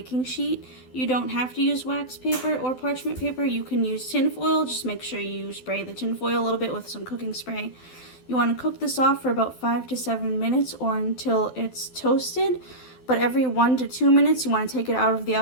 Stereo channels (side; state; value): right; late; 12 ms